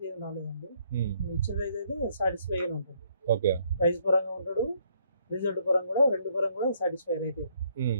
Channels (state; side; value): inverted; both; correlation -0.68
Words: ఏం రాలేదండి. ఇచ్చిన రైతు అయితే సాటిస్ఫై గానే ఉంటుంది. ఓకే, ప్రైస్ పరంగా ఉంటాడు, రిజల్ట్ పరంగా కూడా, రెండు పరంగా కూడా సాటిస్ఫై అయితే.